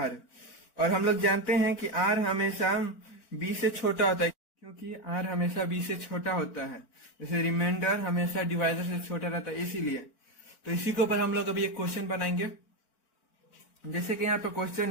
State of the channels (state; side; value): late; right; 4.5 ms